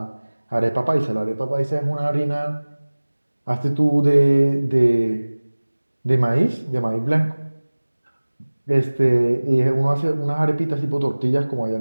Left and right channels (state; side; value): inverted; both; correlation -1.00